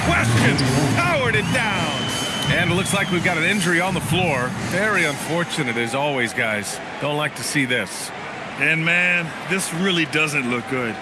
question, powered it down. And it looks like we've got an injury on the floor. Very unfortunate as always, guys. Don't like to see this. And man, this really doesn't look good.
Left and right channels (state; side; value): identical; both; correlation 1.00